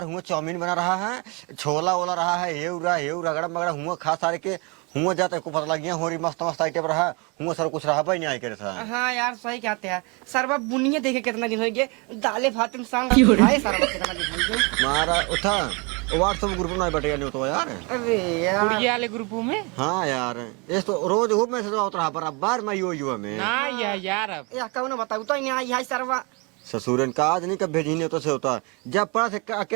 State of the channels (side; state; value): left; quieter; 30.3 dB